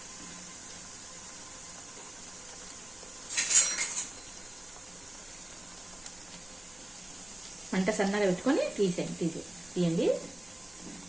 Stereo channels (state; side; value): noise; right; rumble, 26 dB below the sound